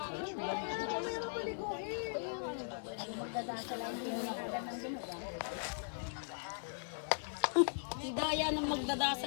Si Daya na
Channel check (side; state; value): right; silent; digital silence